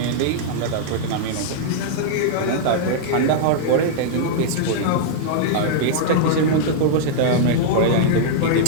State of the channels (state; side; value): different; both; correlation -0.02